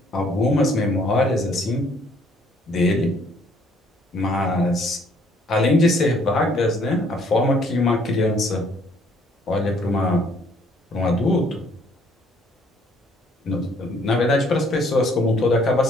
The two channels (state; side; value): normal; both; correlation 0.63